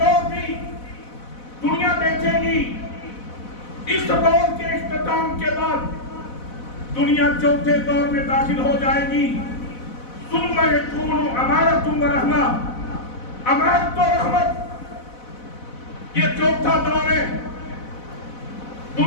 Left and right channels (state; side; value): late; right; 4.0 ms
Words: دور بھی دنیا دیکھے گی. اس دور کے اختتام کے بعد دنیا چوتھے دور میں داخل ہو جائے گی. ثم یکون امارت و رحمہ. امارت و رحمت یہ چوتھا دور ہے.